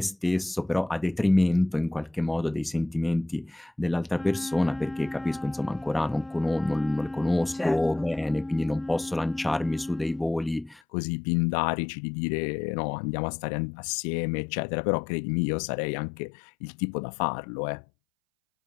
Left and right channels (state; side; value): drops out; right; at 10.8 s